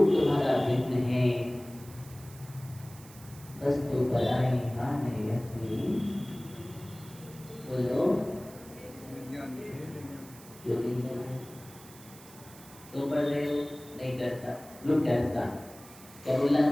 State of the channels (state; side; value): noise; right; hiss, 20 dB below the sound